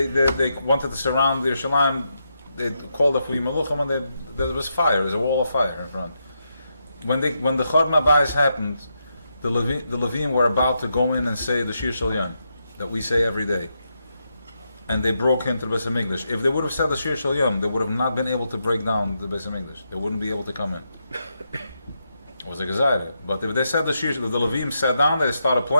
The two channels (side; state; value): both; inverted; correlation -0.83